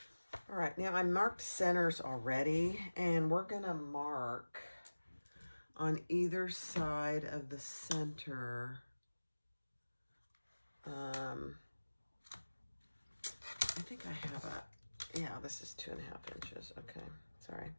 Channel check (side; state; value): both; inverted; correlation -1.00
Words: All right, now I marked centers already, and we're going to mark on either side of the center. I think I have a, yeah, this is 2.5 inches. Okay, sorry.